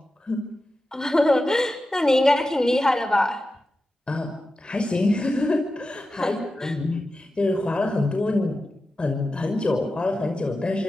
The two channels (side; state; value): both; normal; correlation 0.92